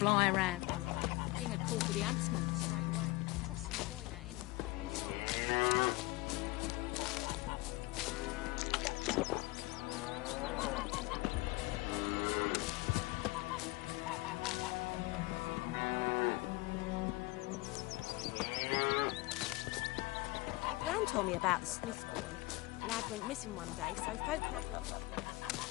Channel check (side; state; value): right; quieter; 22.0 dB